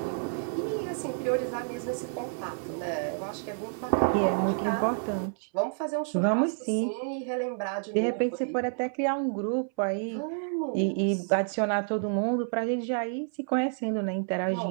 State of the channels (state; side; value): silent; left; 58 dB below the other